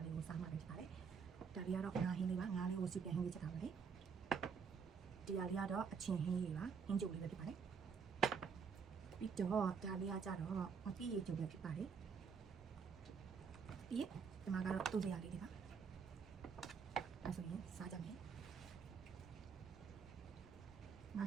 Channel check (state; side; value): quieter; left; 6.1 dB